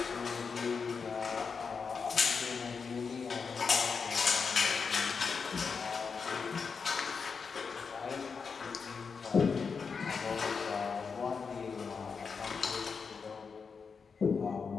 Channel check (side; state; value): right; quieter; 5.5 dB